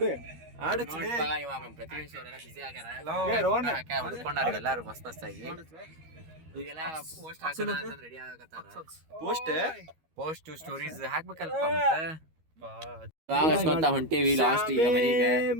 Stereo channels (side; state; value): left; late; 13 ms